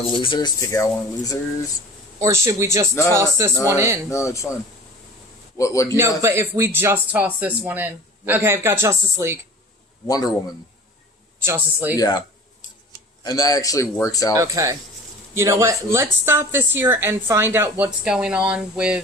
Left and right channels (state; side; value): normal; both; correlation 0.42